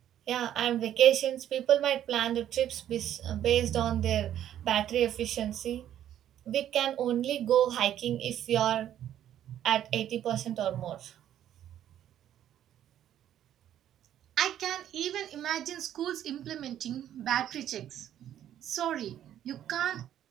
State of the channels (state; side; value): quieter; left; 11.0 dB